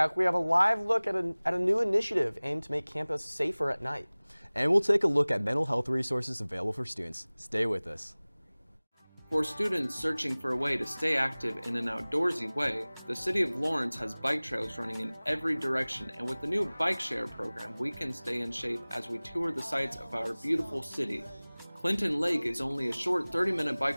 we have a live look at a new initiative aimed to make campus safer at night. And we'll take a look at mental health resources available for students. Stay with us. For students searching for a way to stay active in an outdoorsy way, the City of Lawrence has bike trails running in every direction, and with the new bike share program, we can stay in shape as we tour the sights of our beautiful city. Clinton Lake is only a short 30-minute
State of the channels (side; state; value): both; inverted; correlation -1.00